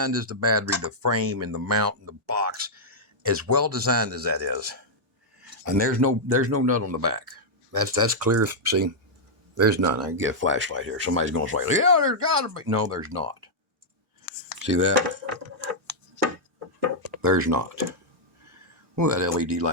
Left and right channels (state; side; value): normal; both; correlation -0.06